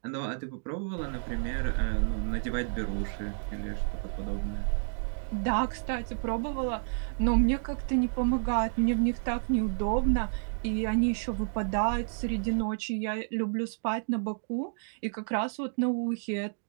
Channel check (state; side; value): silent; left; digital silence